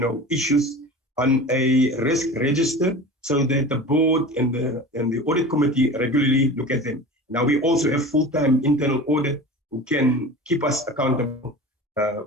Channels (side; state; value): both; normal; correlation 0.35